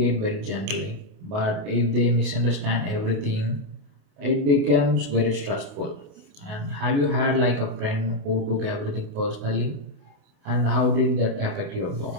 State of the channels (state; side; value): late; left; 28 ms